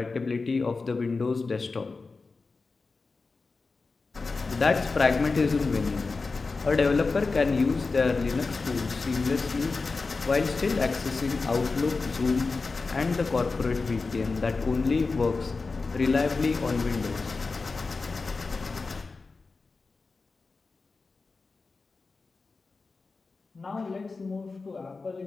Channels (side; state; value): right; quieter; 4.1 dB